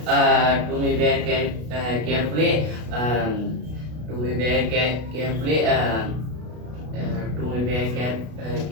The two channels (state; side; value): late; left; 33 ms